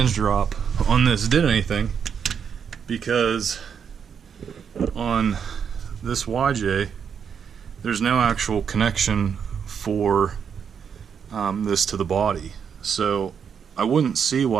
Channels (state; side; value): quieter; left; 7.2 dB